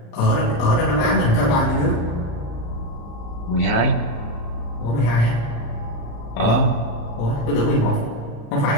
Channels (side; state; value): right; late; 35 ms